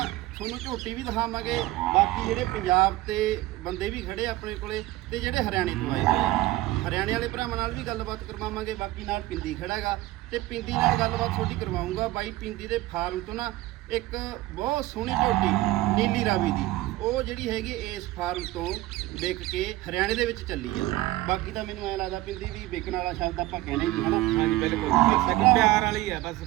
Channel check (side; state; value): left; quieter; 17.4 dB